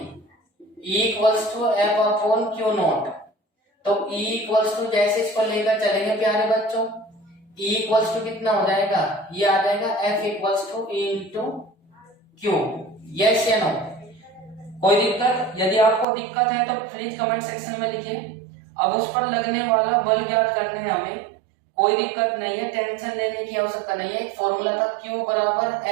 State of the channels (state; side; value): drops out; left; at 16.1 s